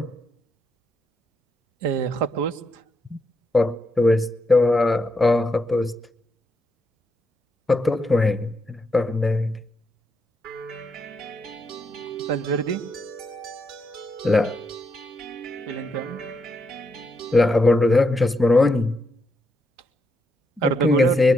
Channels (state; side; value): normal; both; correlation 0.81